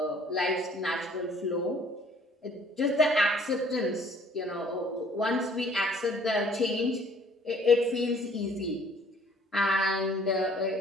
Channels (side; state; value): both; normal; correlation 0.57